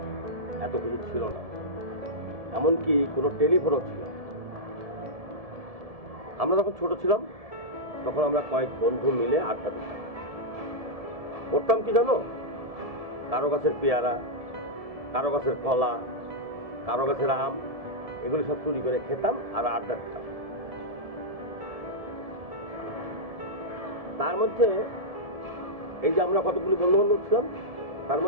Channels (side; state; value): left; late; 1.7 ms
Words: এত কিছু ছিল না। এমনকি কোনো টেলিফোনও ছিল না। আমরা যখন ছোট ছিলাম তখন আমরা কয়েক বন্ধু মিলে আড্ডা দিতাম। করতাম কি জানো? কারো গাছের পেয়ারা, কারো গাছের কলা, কারো গাছের আম, এগুলি সব চুরি করে খেতাম আর আড্ডা দিতাম। তার মধ্যে এই যে আমরা কতগুলি বন্ধু বান্ধব ছিলাম, তার